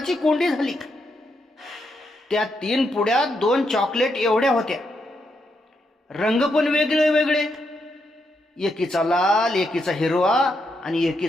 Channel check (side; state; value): both; normal; correlation 0.81